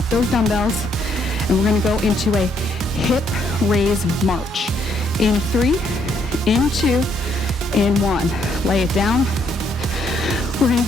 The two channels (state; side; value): normal; both; correlation 0.71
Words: those dumbbells and we're gonna go into a hip raise march. In 3, in 2, in 1. Lay it down. We're gonna